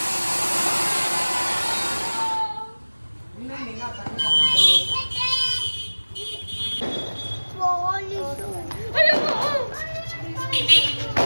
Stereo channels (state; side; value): inverted; both; correlation -1.00